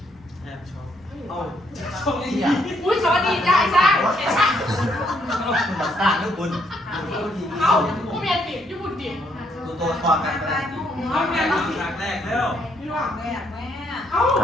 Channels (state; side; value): normal; both; correlation 0.72